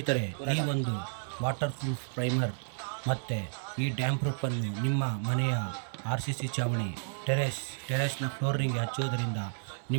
ಈ ಒಂದು ವಾಟರ್ ಪ್ರೂಫ್ ಪ್ರೈಮರ್ ಮತ್ತು ಈ ಡ್ಯಾಮ್ ಪ್ರೂಫನ್ನು ನಿಮ್ಮ ಮನೆಯ RCC ಚಾವಣಿ ಟೆರೇಸ್ನ ಫ್ಲೋರಿಂಗ್ಗೆ ಹಚ್ಚುವುದರಿಂದ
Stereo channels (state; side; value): silent; left; 57 dB below the other